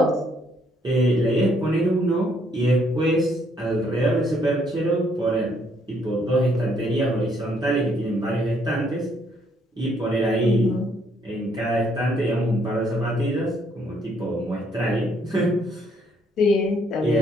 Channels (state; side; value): normal; both; correlation 0.68